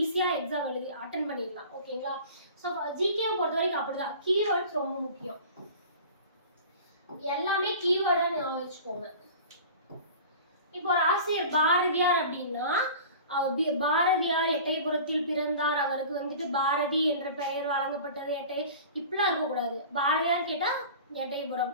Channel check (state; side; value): inverted; both; correlation -0.40